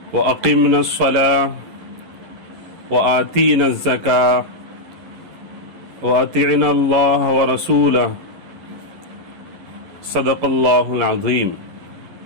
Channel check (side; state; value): left; late; 11 ms